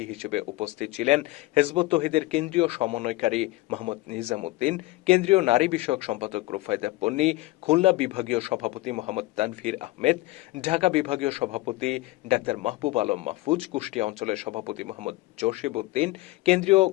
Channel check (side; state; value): right; quieter; 19.3 dB